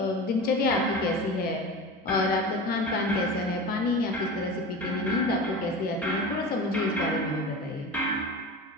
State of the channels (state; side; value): normal; both; correlation 0.31